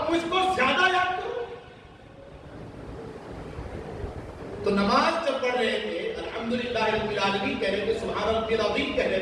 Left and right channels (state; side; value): identical; both; correlation 1.00